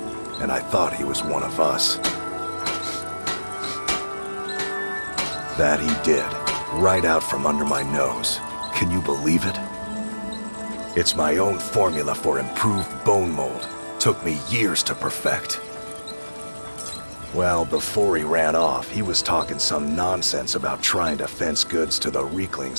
and I thought he was one of us. That he did, right out from under my nose. Can you believe it? It's my own formula for improved Bonemold. Took me years to perfect. Well, before he ran off, he was talking some nonsense about trying to fence goods to the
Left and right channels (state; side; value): inverted; both; correlation -1.00